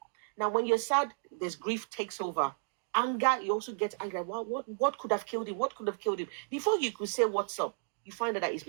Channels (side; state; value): left; silent; digital silence